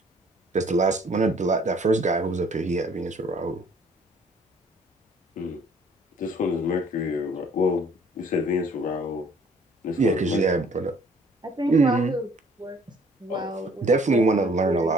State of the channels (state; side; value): normal; both; correlation 0.58